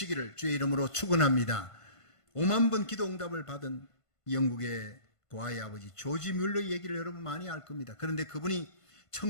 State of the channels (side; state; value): right; late; 1.5 ms